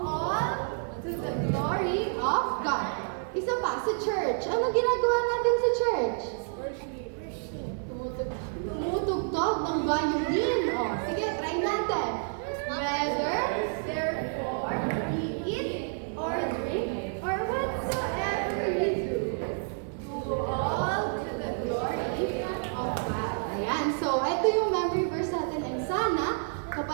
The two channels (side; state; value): left; silent; 58 dB below the other